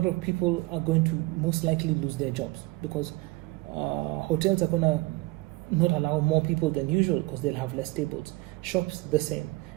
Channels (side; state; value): left; quieter; 22.2 dB